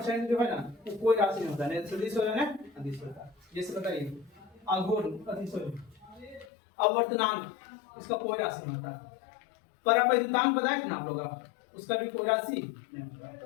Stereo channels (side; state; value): right; drops out; at 6.5 s